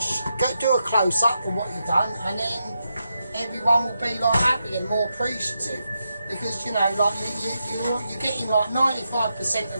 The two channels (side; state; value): both; inverted; correlation -0.85